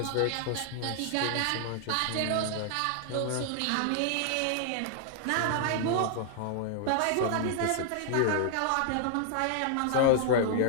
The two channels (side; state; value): both; different; correlation -0.01